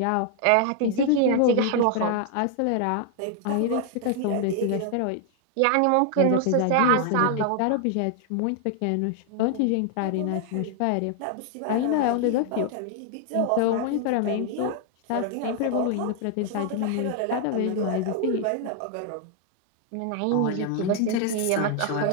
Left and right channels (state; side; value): different; both; correlation 0.00